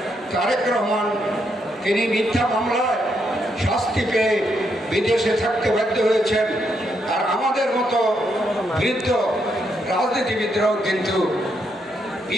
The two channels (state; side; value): normal; both; correlation 0.78